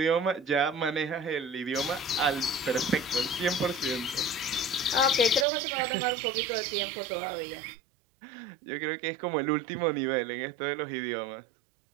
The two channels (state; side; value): drops out; left; at 5.5 s